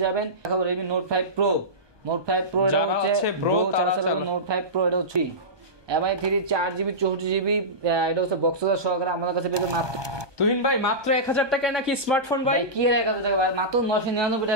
যাবেন। এখন Redmi Note 5 Pro এটা হচ্ছে Pro Note 5 Pro এটা হচ্ছে MI3 4GB 64GB। এটা হচ্ছে বক্স সহকারে আমাদের কাছে পেয়ে যাবে মাত্র তুহিন ভাই মাত্র 1000 টাকায় নাকি স্মার্টফোন ভাই? কি 1000 টাকা ভাই, মাত্র 999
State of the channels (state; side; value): late; left; 1.2 ms